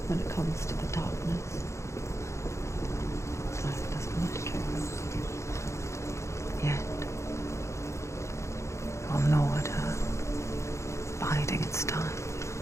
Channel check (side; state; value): right; late; 0.14 ms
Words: when it comes to the darkness. Life doesn't want to kill her. Yet, it will gnaw at her, biding its time.